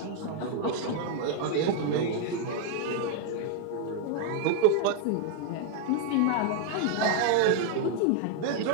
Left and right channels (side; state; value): both; different; correlation 0.00